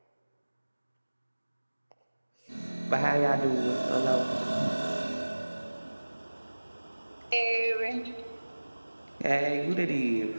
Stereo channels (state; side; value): inverted; both; correlation -1.00